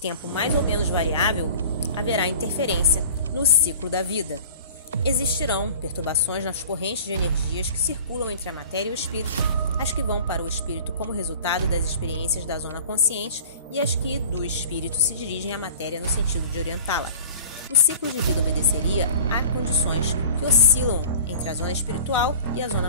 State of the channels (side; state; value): both; inverted; correlation -0.43